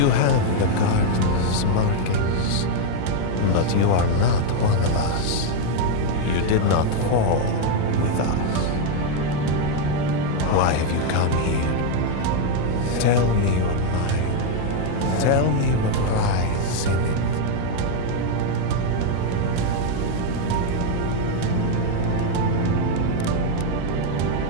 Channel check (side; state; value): both; different; correlation 0.01